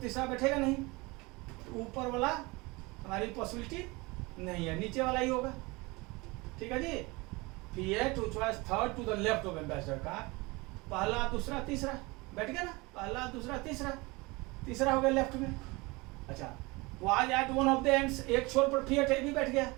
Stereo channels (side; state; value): left; quieter; 24.5 dB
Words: बैठेगा नहीं, तो ऊपर वाला हमारी पॉसिबिलिटी नहीं है, नीचे वाला ही होगा। ठीक है जी, Fiat which was third to the left of Ambassador car, पहला, दूसरा, तीसरा, बैठ गया ना, पहला दूसरा तीसरा, तीसरा हो गया लेफ्ट में। अच्छा, was at one of the ends, एक छोर पर फिएट है, भी बैठ गया।